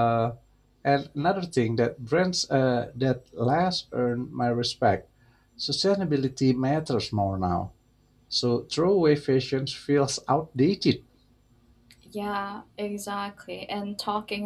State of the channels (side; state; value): both; identical; correlation 1.00